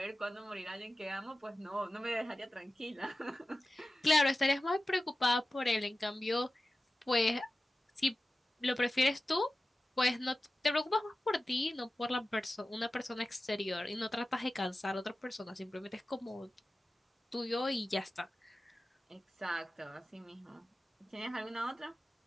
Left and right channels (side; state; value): both; normal; correlation 0.95